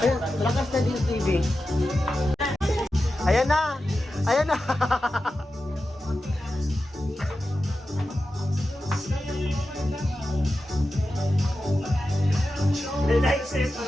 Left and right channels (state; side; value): normal; both; correlation 0.92